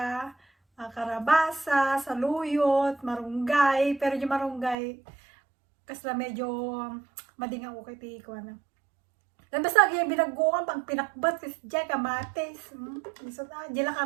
karabasa, saluyot, marunggay, pero yung marunggay kasla medyo madinga ko kay tiko na. Dan basta gyud binagguan pang pinakbat kasi diay kamates. Iso ta dila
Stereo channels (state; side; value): drops out; left; at 4.8 s